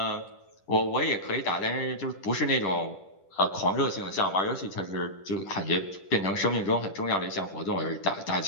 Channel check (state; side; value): late; right; 10 ms